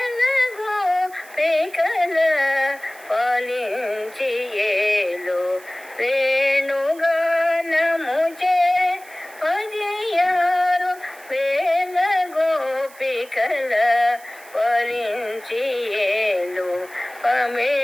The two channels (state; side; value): noise; right; hiss, 22 dB below the sound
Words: గోపికల పాలించి ఏలు, వేణుగానముచే పదియారు వేల గోపికల పాలించి ఏలు,